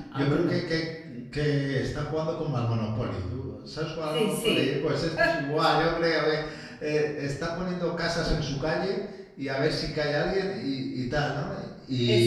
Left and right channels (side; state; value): both; identical; correlation 1.00